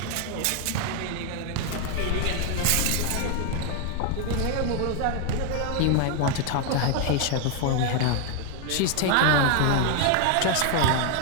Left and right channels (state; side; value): different; both; correlation 0.01